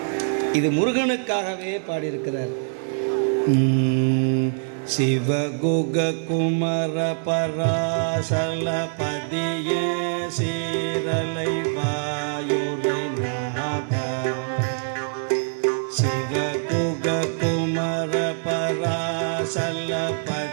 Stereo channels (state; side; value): silent; left; digital silence